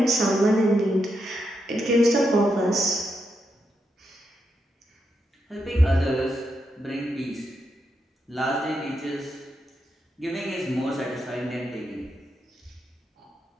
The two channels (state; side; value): normal; both; correlation 0.83